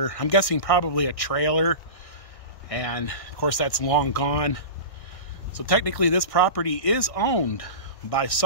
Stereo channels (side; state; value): right; late; 1.6 ms